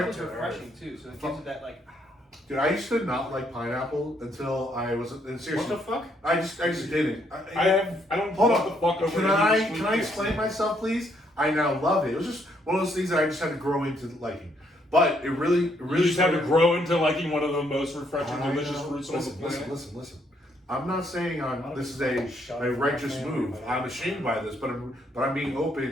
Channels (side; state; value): both; normal; correlation 0.72